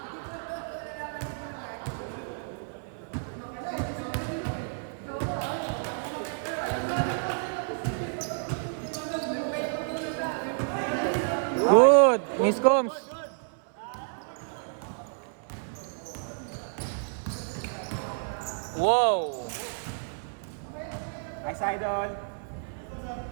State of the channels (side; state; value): left; silent; 58 dB below the other